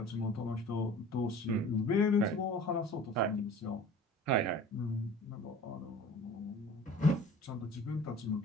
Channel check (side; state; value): both; normal; correlation 0.43